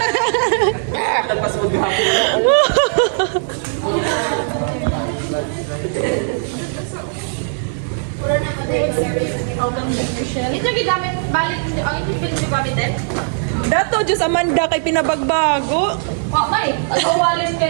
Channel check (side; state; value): left; silent; digital silence